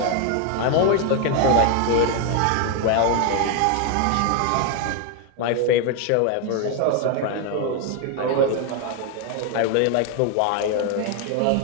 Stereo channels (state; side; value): different; both; correlation 0.01